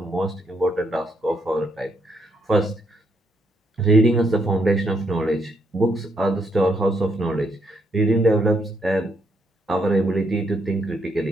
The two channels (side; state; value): both; normal; correlation 0.75